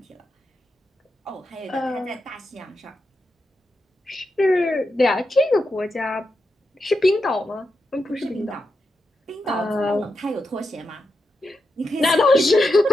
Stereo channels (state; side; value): normal; both; correlation 0.87